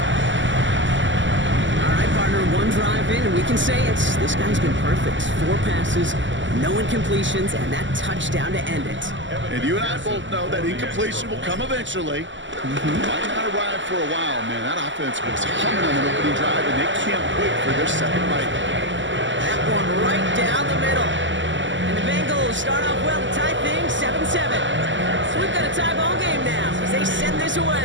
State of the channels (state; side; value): late; left; 0.54 ms